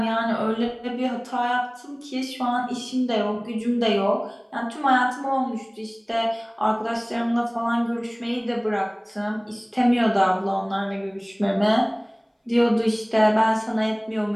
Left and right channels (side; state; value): both; identical; correlation 1.00